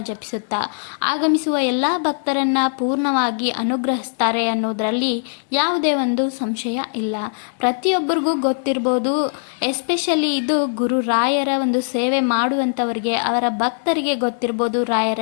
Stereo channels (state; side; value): silent; right; digital silence